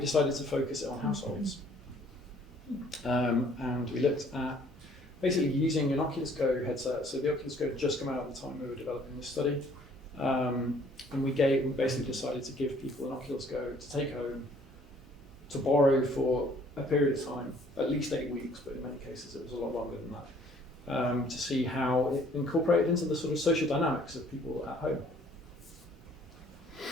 decided to focus it on households. And we looked at basically using an Oculus Go headset. So the Oculus Go had just come out at the time we were developing this study. And we basically decided to give people an Oculus Go to take home, to borrow for a period of time, at least 8 weeks, but in many cases it was a lot longer than that, to see how it incorporated into the sort of social dynamics of people at home.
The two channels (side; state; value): both; normal; correlation 0.59